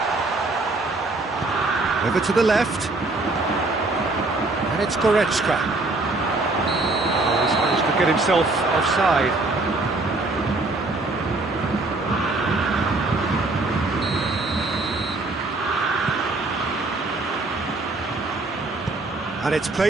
Over to the left. And it's Goretzka. He's managed to get himself offside. And it's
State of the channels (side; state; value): left; quieter; 3.1 dB